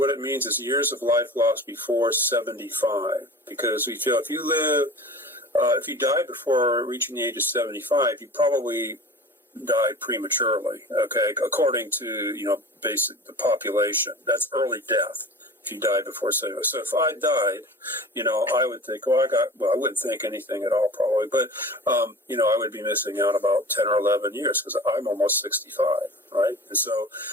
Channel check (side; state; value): both; normal; correlation 0.38